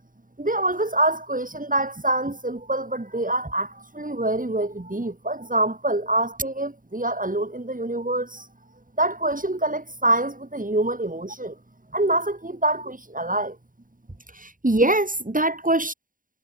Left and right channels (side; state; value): left; late; 0.39 ms